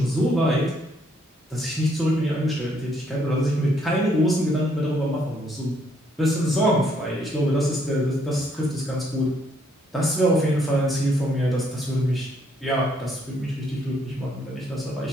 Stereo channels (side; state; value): both; normal; correlation 0.70